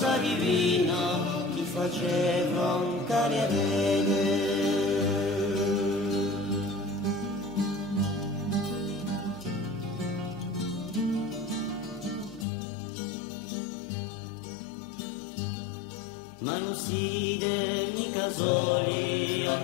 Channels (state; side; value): drops out; right; at 12.5 s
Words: divina faceva un carriere. Ma non siete mica soli a